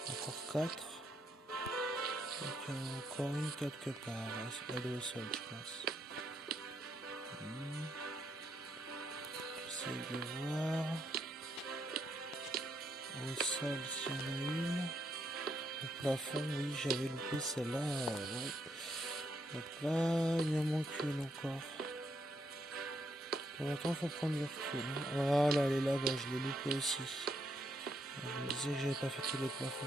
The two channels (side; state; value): both; normal; correlation 0.76